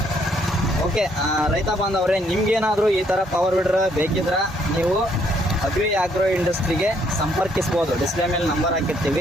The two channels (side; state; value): both; normal; correlation 0.69